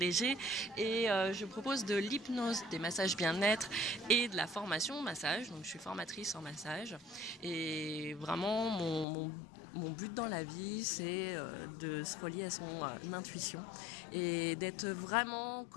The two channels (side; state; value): right; drops out; at 9.1 s